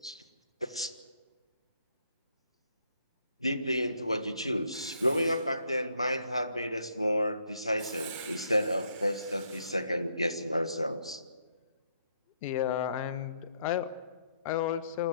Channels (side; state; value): both; inverted; correlation -0.71